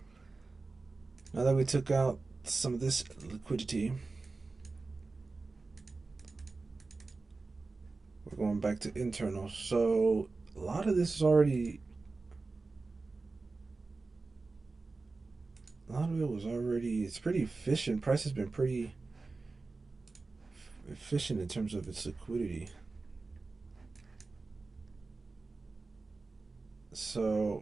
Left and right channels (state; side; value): quieter; left; 3.7 dB